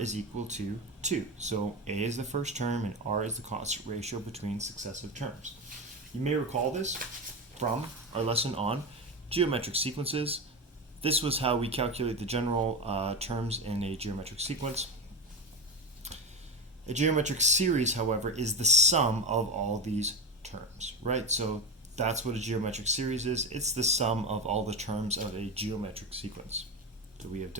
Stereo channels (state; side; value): normal; both; correlation 0.19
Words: equal to 2. So a is the first term and r is the constant ratio between successive terms. You may recall this from our lesson on geometric sequences. This was how we calculate the general terms in a geometric sequence. A geometric series, however, is the sum of all these terms, right? So that's what a geometric series is. It's the sum of all the terms of a geometric sequence. So we have